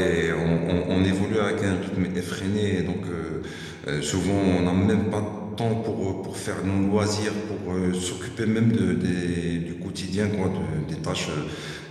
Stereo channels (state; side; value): identical; both; correlation 1.00